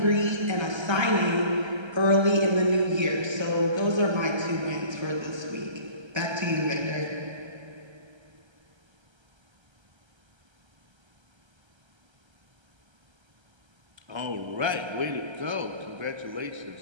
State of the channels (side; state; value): left; late; 1.3 ms